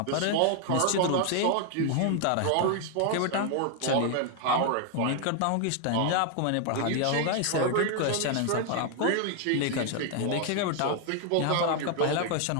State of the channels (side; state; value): both; different; correlation 0.00